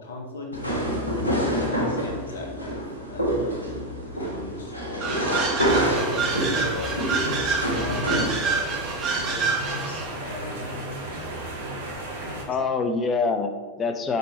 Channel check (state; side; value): normal; both; correlation 0.11